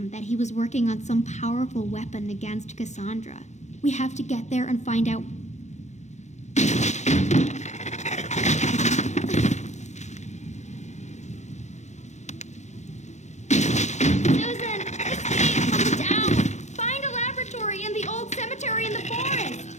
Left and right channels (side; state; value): right; late; 0.33 ms